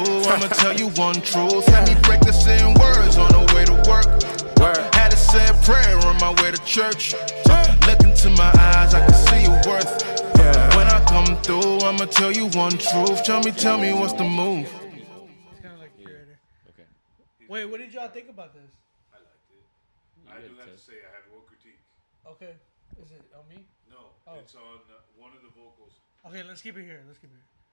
I'ma tell you one truth. Had me practicing words on the way to work. Had to say a prayer on my way to church. Look into my eyes, I can see your worth. When I come through, I'ma tell you one truth. Tell me what's the move. Wait, what did y'all think about this? I liked it. I do have to say I have one critique. Okay. Is it on me? No, it's on one of the vocals. Okay, let's keep it here.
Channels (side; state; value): both; inverted; correlation -1.00